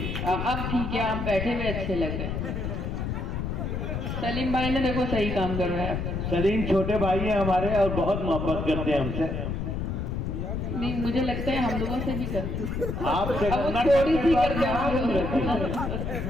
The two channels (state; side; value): noise; left; rumble, 3 dB below the sound